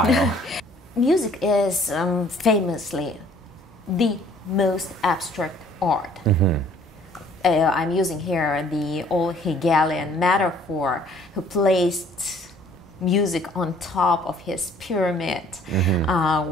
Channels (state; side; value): normal; both; correlation 0.57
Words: Music is famously the most abstract art. I'm using here the old Hegelian metaphor, who placed music on top of his pyramid